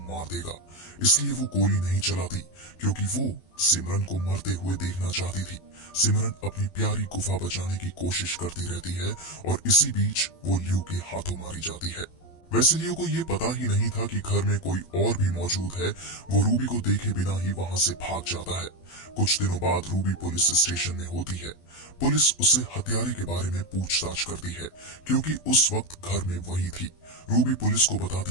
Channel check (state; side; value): late; right; 12 ms